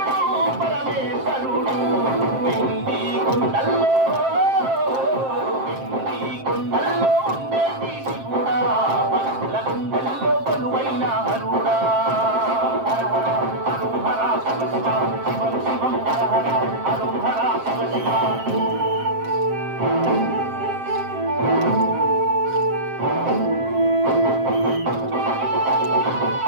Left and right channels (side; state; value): left; late; 7.6 ms